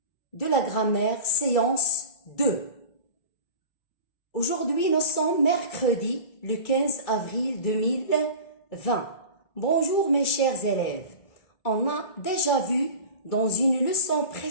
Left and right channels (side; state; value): right; late; 2.3 ms